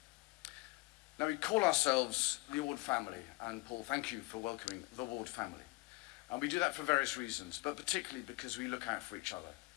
Now, we call ourselves the Award family, and Paul, thank you for welcoming the Award family. And we do that for various reasons, but particularly because we look out for each other.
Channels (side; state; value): right; quieter; 23.1 dB